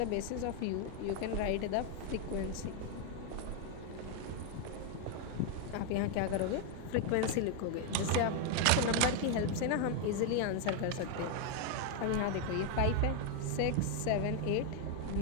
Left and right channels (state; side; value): different; both; correlation 0.01